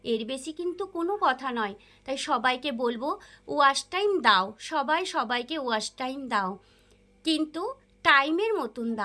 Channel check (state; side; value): identical; both; correlation 1.00